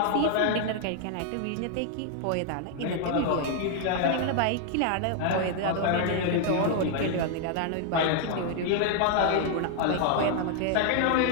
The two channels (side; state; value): both; different; correlation 0.00